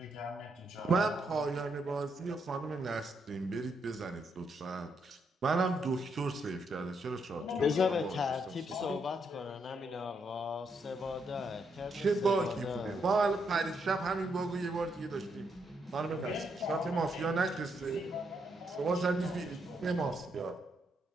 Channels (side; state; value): both; normal; correlation 0.77